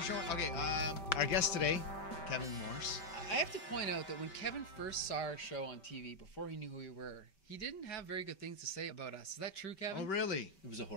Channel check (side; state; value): right; late; 5.2 ms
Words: showing. Okay, our guest today, Kevin Morse. I have to point out that when Kevin first saw our show on TV, before he knew who we were, he didn't have very good things to say about us. Is that true, Kevin? Oh, really? It was a